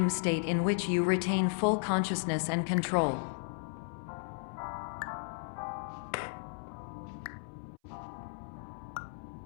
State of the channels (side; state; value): right; silent; 55 dB below the other